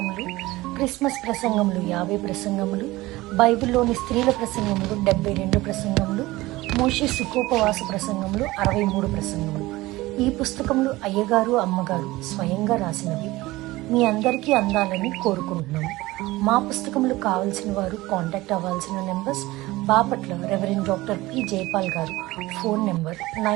క్రిస్మస్ ప్రసంగములు 50 ప్రసంగములు, బైబిల్లోని స్త్రీల ప్రసంగములు 72 ప్రసంగములు, మోషే సుఖోపవాస ప్రసంగములు 63 ప్రసంగములు. ఈ పుస్తకములు అయ్యగారు అమ్మగారు స్వయంగా రాసినవి మీ అందరికీ అందాలని కోరుకుంటున్నాము. మా పుస్తకములు కావాల్సిన వారు కాంటాక్ట్ అవ్వాల్సిన numbers: Bapatla reverend doctor P Jayapal గారు, phone number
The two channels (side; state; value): left; quieter; 19.2 dB